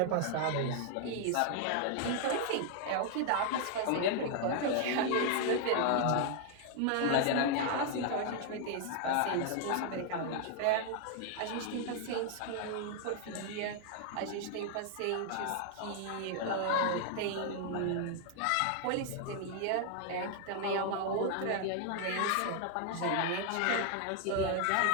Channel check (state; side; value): different; both; correlation 0.00